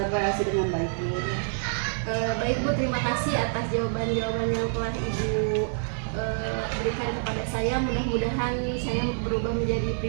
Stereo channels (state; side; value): silent; left; digital silence